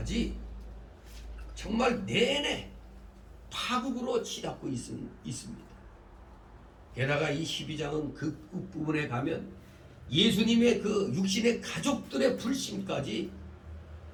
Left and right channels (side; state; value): both; identical; correlation 1.00